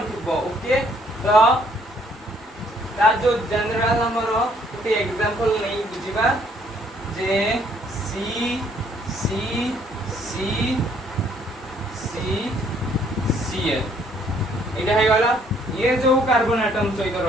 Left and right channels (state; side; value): normal; both; correlation 0.65